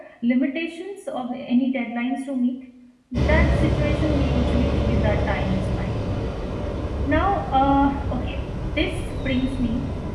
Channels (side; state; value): both; identical; correlation 1.00